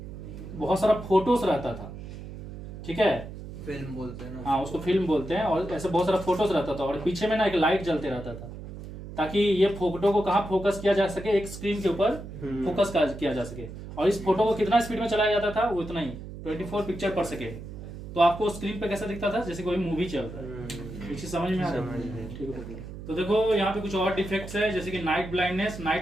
बहुत सारा फोटोज रहता था, ठीक है, फिल्म बोलते हैं ना, हाँ उसको फिल्म बोलते हैं। और ऐसे बहुत सारा फोटोज रहता था, और पीछे में ना एक लाइट जलते रहता था, ताकि ये फोटो को कहाँ फोकस किया जा सके, एक स्क्रीन के ऊपर फोकस किया जा सके। और इस फोटो को कितना स्पीड में चलाया जाता था, वो इतना ही 24 पिक्चर पर सेकेंड। तो आपको स्क्रीन पे कैसा दिखता था, जैसे कोई मूवी चल रहा है। ये चीज समझ में आ रही है? ठीक है। तो देखो यहाँ पे कुछ और डिफेक्ट्स है, जैसे कि नाइट ब्लाइंडनेस।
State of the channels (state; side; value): noise; right; hum, 11 dB below the sound